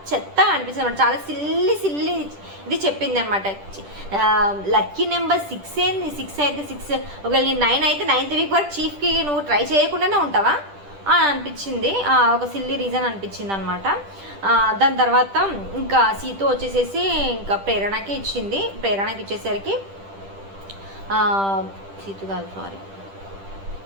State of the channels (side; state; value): left; late; 10 ms